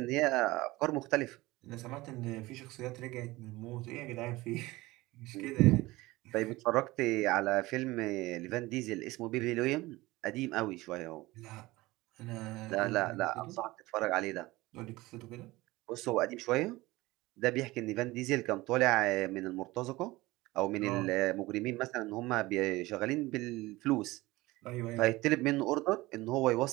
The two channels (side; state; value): left; quieter; 19.9 dB